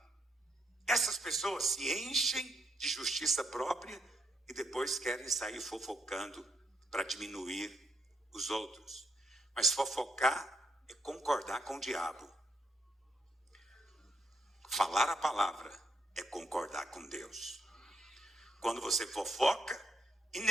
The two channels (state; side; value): normal; both; correlation 0.76